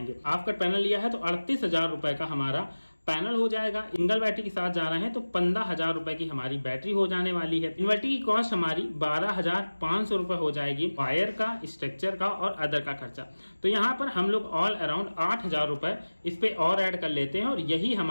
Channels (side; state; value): both; inverted; correlation -1.00